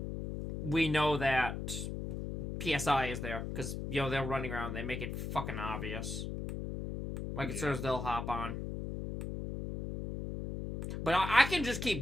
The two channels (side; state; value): left; noise; hum, 5 dB below the sound